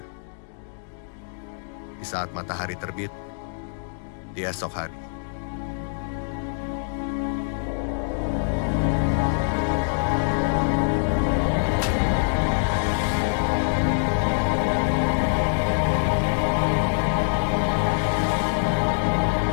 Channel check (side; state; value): right; silent; digital silence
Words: Di saat matahari terbit, di esok hari.